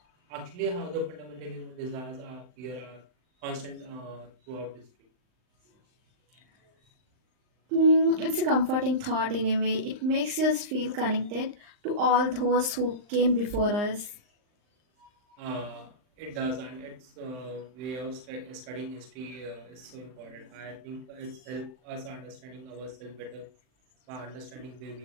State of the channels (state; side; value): late; left; 39 ms